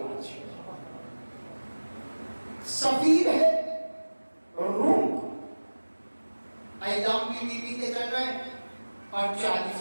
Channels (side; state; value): both; inverted; correlation -1.00